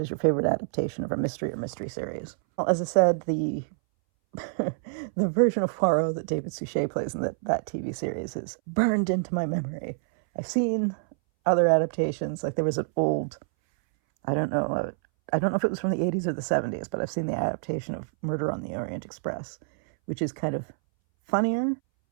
your favorite adaptation of a mystery or mystery series? Well, as I said, the the version of Poirot that David Suchet plays in that TV series is burned into my memory. I've seen other adaptations, like there was an old, I don't know if it was from the 80s or the 70s, but I've seen the adaptation of Murder on the Orient Express, which is kind of funnier.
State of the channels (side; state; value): left; silent; 60 dB below the other